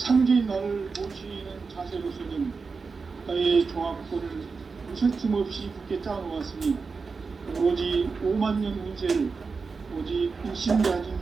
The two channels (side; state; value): left; quieter; 4.7 dB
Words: 나를 모시는 자세로서는 나의 조합권을 무슨 틈 없이 굳게 짜놓았으니 오로지 5만 년 운세를 오직